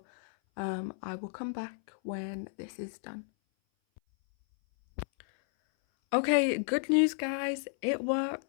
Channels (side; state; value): right; silent; 56 dB below the other